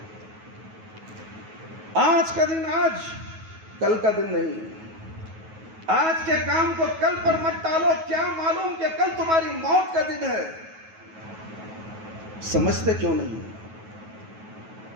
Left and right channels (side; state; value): left; late; 9.3 ms